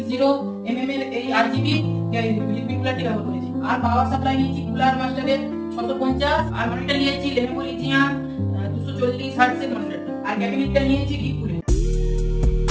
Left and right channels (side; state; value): both; identical; correlation 1.00